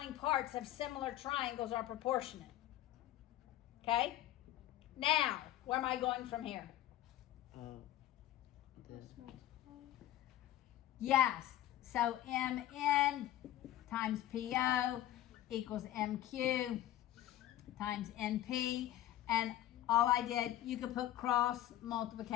parts of similar triangles are proportionate. Okay? Now, where am I going from here? Yes. So MN times PO equals MQ times NP. And all I did, you could put cross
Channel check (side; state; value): right; quieter; 13.6 dB